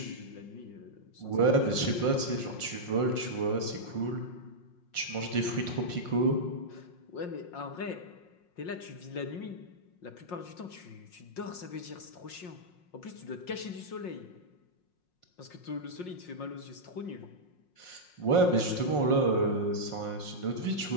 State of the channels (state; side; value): late; right; 5.6 ms